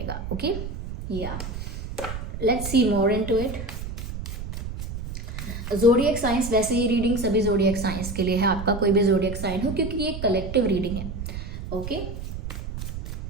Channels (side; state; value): right; noise; rumble, 7 dB below the sound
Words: Okay let's see more into it. Zodiac science, वैसे ये रीडिंग सभी ज़ोडिएक साइंस के लिए है, आपका कोई भी ज़ोडिएक साइन हो, क्योंकि ये कलेक्टिव रीडिंग है। ओके